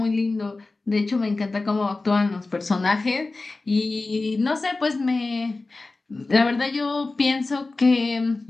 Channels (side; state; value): right; quieter; 3.4 dB